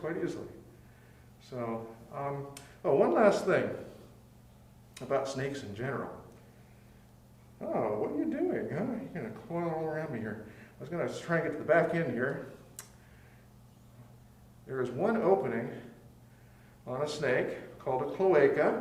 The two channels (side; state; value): both; identical; correlation 1.00